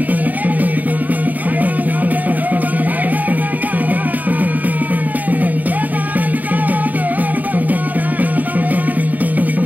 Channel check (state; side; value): late; left; 0.081 ms